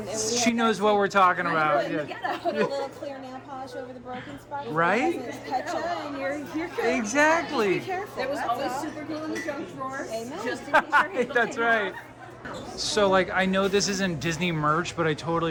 we She had knows that what we're talking about. In the Yeah. ghetto. Put a little clear nail polish over the broken spot. Right? It doesn't touch you, and you're good. Exactly. Be careful. There was that's always all. super glue in the junk drawer. Amen. Just in case your handle That's came right. off. So like, I know this isn't Disney merch, but I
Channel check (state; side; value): identical; both; correlation 1.00